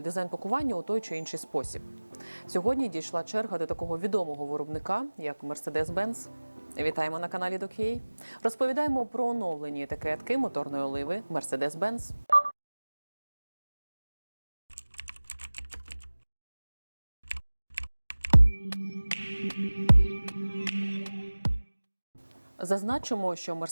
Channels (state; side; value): inverted; both; correlation -1.00